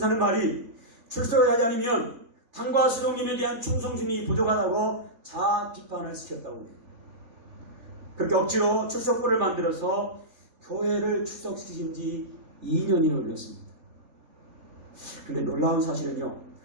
하는 말이 출석을 하지 않으면 당과 수령님에 대한 충성심이 부족하다고 자아 비판을 시켰다고 해요. 그렇게 억지로 출석부를 만들어서 교회를 출석시킨 지 2년이 걸렸습니다. 그런데 놀라운 사실은요,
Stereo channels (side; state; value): left; late; 3.4 ms